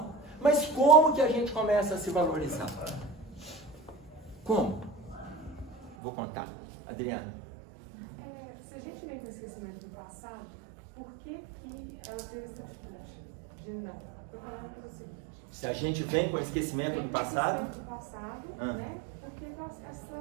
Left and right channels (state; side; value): drops out; left; at 6.0 s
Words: Mas como que a gente começa a se valorizar? Como? Vou contar. Adriana. Se a gente vem com o esquecimento do passado, por que ela tem essa atitude de não? Eu vou falar para você. Se a gente vem com o esquecimento do passado? Né? Porque